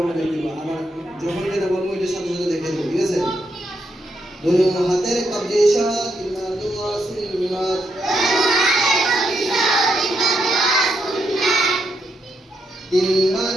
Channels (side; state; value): both; normal; correlation 0.80